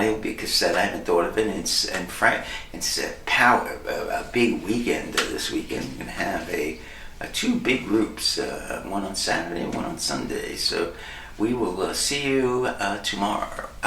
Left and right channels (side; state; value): both; identical; correlation 1.00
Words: will be a cassette. I haven't thought of it. It's a big weekend this weekend. We're going to have 2 big groups, one on Saturday and one on Sunday. So we will see you tomorrow.